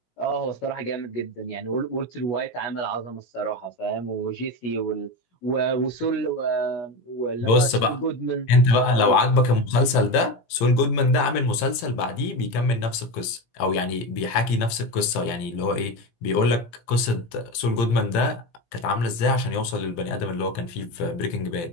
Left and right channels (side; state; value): right; late; 17 ms